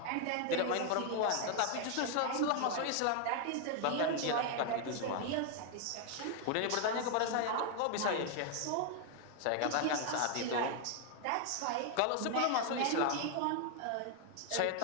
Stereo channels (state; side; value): different; both; correlation 0.00